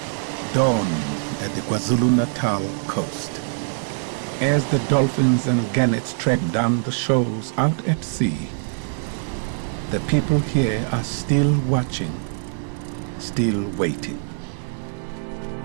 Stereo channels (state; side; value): silent; left; 63 dB below the other